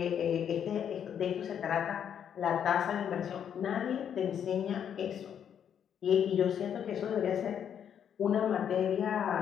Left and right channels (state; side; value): quieter; right; 8.7 dB